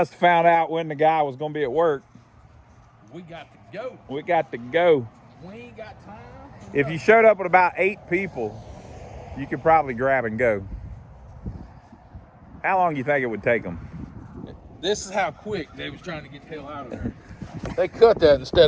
have found out when the guy was going to be at work. We got to go. We got to go. We ain't got time. If you showed up with about 8 people, you could probably grab and go. How long do you think it would take them? This is how quick they was trying to get the hell out of there. They cut that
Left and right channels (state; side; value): identical; both; correlation 1.00